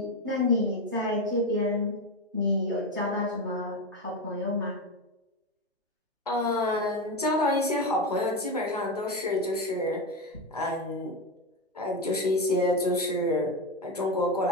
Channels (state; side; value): normal; both; correlation 0.14